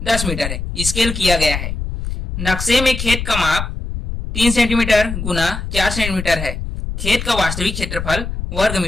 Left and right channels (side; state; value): left; noise; rumble, 5 dB below the sound